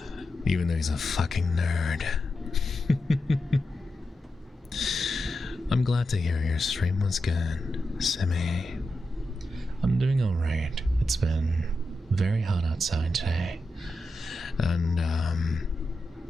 Even though he's a fucking nerd. I'm glad to hear your stream was good, Simi. I'm doing alright. It's been very hot outside today. And,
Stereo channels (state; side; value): normal; both; correlation 0.89